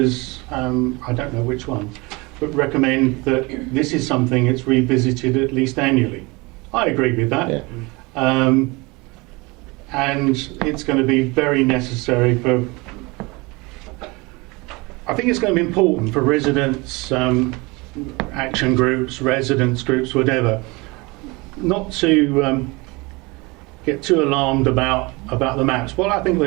I don't know which one, but recommend that this is something that's revisited at least annually. I agree with that. Yeah. And it's going to be very necessary for, I think it's going to be important for residents, action groups, residents groups, whatever, not to get too alarmed about the maps. What I think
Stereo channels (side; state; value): left; quieter; 25.3 dB